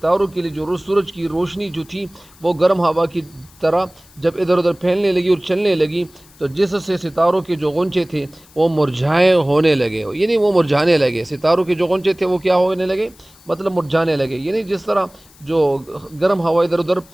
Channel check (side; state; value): left; noise; hiss, 26 dB below the sound